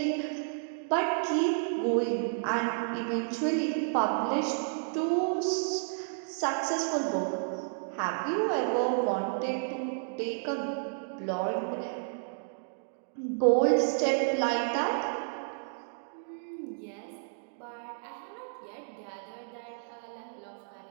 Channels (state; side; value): silent; left; digital silence